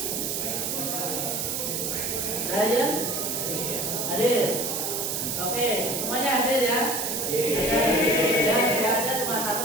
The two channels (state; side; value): noise; right; hiss, 1 dB below the sound